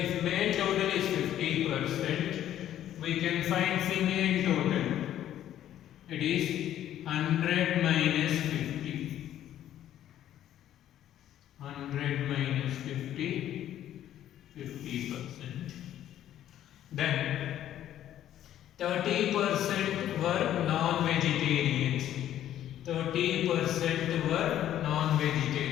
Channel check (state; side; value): quieter; right; 11.7 dB